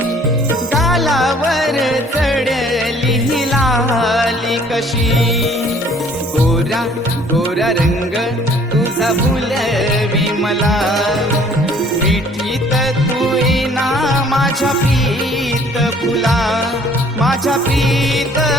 गालावर चढली ही लाली कशी गोरा गोरा रंग तुझा भुलवी मला मिठीत तू येना माझ्या प्रीत फुला माझ्या प्रीत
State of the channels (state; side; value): normal; both; correlation 0.56